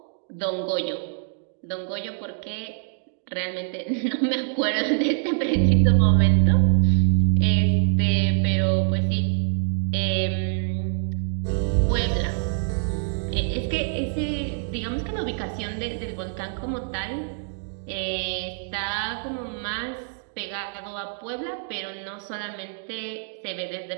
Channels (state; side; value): silent; left; digital silence